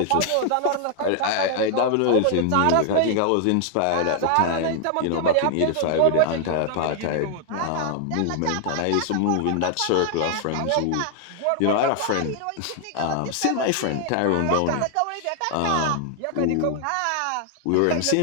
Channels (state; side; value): different; both; correlation 0.00